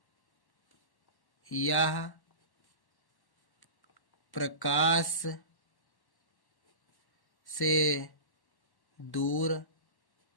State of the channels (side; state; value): right; late; 1.1 ms